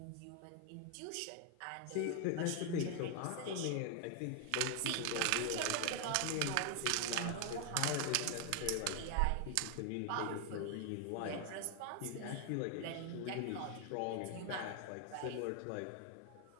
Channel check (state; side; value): different; both; correlation 0.00